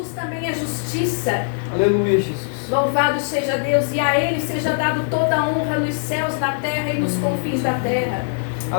também é justiça. Aleluia, Jesus. Louvado seja Deus, e a Ele seja dado toda a honra nos céus, na terra e nos confins da terra.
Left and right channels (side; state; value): right; silent; digital silence